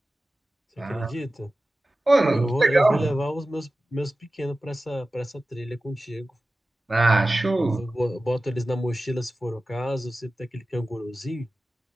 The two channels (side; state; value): both; normal; correlation 0.95